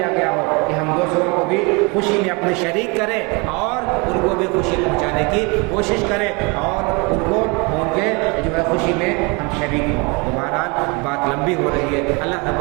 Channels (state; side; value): quieter; left; 29.1 dB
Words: گیا ہو کہ ہم دوسروں کو بھی خوشی میں اپنے شریک کریں اور ان کو بھی خوشی پہنچانے کی کوشش کریں اور ان کو ان کے جو ہے خوشی میں ہم شریک ہوں. تو بہرحال بات لمبی ہو رہی ہے. اللہ رب